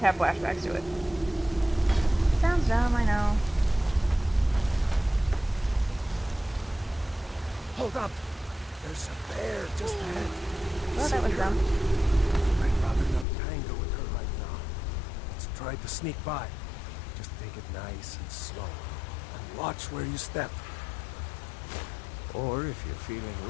have flashbacks to it. Sounds dumb, I know. Hold up! There's a bear just ahead. Oh, that was dumb. I'd rather not tangle with her right now. Let's try to sneak by. Just take it nice and slow. And watch where you step. Or if you're feeling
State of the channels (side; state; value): right; drops out; at 13.2 s